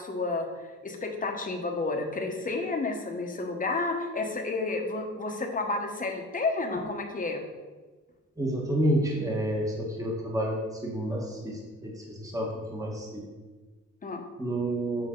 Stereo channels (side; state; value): both; normal; correlation 0.40